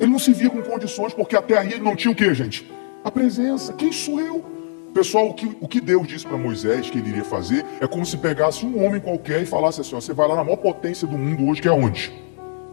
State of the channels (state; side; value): silent; right; digital silence